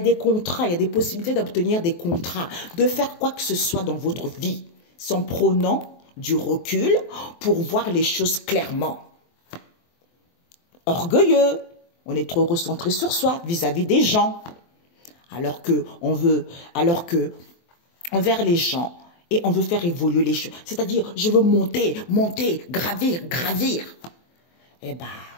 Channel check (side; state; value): right; late; 23 ms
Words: contrats, il y a des possibilités d'obtenir des contrats, de faire quoi que ce soit dans votre vie, sans prenant du recul pour voir les choses clairement. Orgueilleux, on est trop recentré sur soi vis-à-vis des gens, alors que envers les gens, et on veut faire évoluer les choses. C'est-à-dire, je veux monter, gravir. Eh ben,